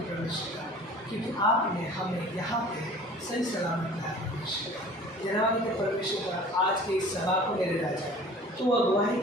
परमेश्वर का क्योंकि आपने हमें यहाँ पे सही सलामत लाया परमेश्वर का। धन्यवाद देते परमेश्वर का आज के इस सभा को मेरे राजा तो अगुवाही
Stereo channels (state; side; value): normal; both; correlation 0.45